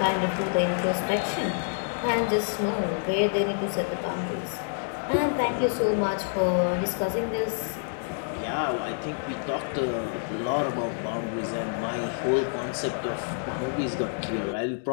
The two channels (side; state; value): right; silent; digital silence